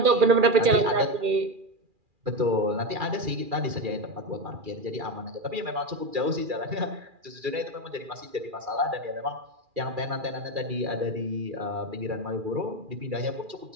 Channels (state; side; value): late; left; 2.4 ms